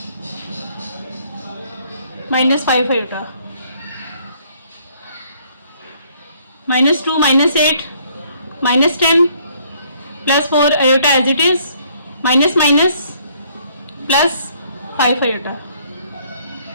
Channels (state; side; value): inverted; both; correlation -0.63